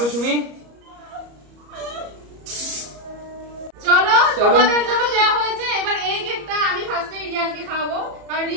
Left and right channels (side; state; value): left; late; 34 ms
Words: সুমি, চলো তোমাদের জন্য দেওয়া হয়েছে। এবার এই কেকটা আমি ফার্স্টে রিয়ানকে খাওয়াবো, কারণ